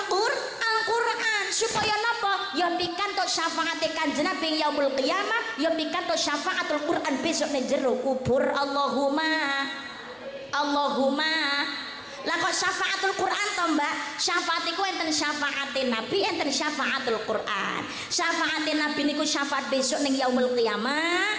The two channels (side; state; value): both; identical; correlation 1.00